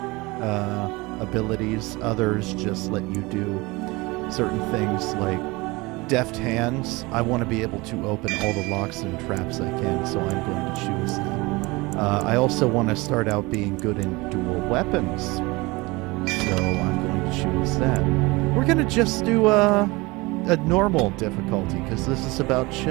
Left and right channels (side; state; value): left; quieter; 23.5 dB